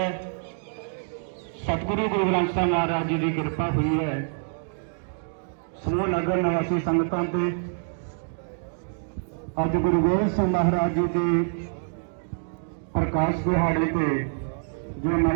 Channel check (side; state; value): left; silent; digital silence